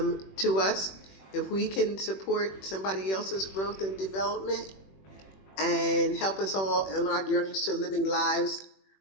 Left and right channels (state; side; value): late; right; 21 ms